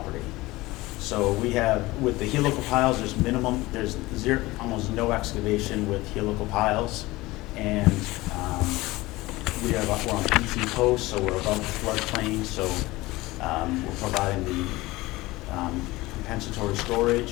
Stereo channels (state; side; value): quieter; right; 20.0 dB